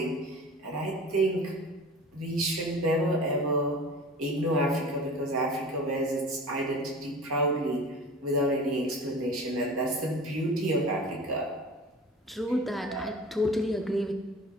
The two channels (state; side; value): normal; both; correlation 0.39